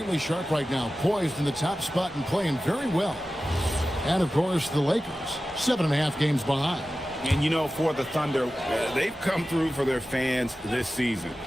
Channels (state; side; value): normal; both; correlation 0.94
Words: sharp right now, poised in the top spot and playing very well. And, of course, the Lakers, 7.5 games behind. And, you know, for the Thunder, they've come through for their fans this season.